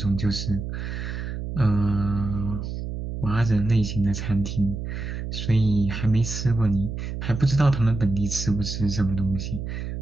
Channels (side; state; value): right; noise; hum, 6 dB below the sound